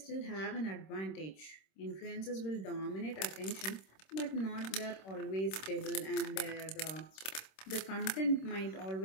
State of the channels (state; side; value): late; right; 26 ms